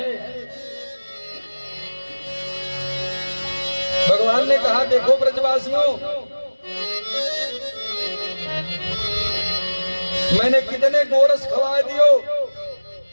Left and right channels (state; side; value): inverted; both; correlation -1.00